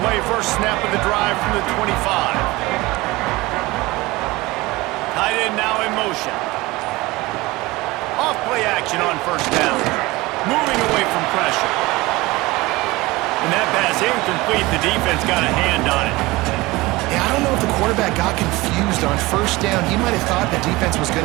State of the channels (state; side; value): quieter; left; 21.0 dB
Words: play first snap of the drive from the 25. Tight end now in motion. Off play action on first down. Moving away from pressure. And that pass incomplete. The defense got a hand on it. Yeah, I don't know if the quarterback got confused on first down. He might have thought the defense was going